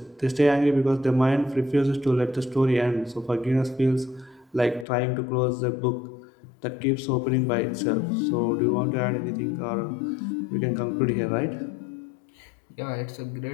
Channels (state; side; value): drops out; right; at 4.9 s